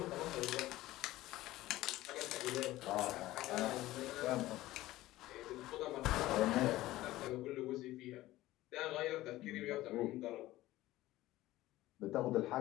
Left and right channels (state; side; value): quieter; right; 16.6 dB